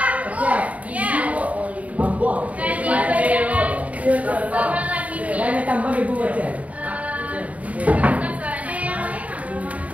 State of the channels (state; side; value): late; left; 0.069 ms